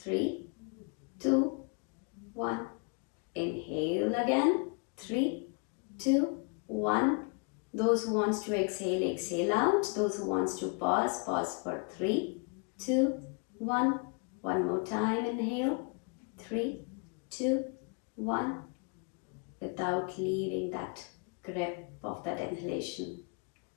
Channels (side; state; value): right; quieter; 38.1 dB